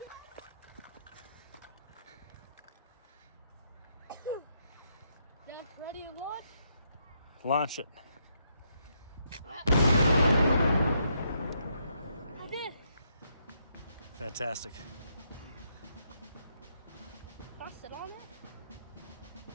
Dad, ready to launch? Launch it. I did. Fantastic. Can I sit on it?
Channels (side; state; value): both; inverted; correlation -0.77